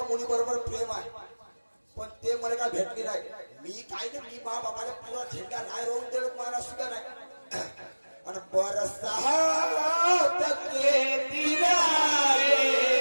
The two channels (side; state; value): both; inverted; correlation -1.00